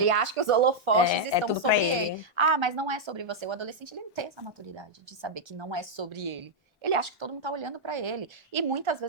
acha que os holofotes estão sobre ele. Ah, mas não é sobre você. O adolescente, ele não tem essa maturidade de saber que não é sobre ele. Ele acha que todo mundo tá olhando pra ele. E muitas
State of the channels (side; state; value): both; normal; correlation -0.04